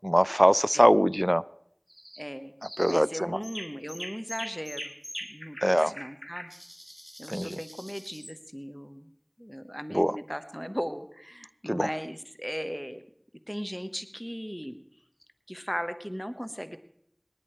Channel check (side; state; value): both; identical; correlation 1.00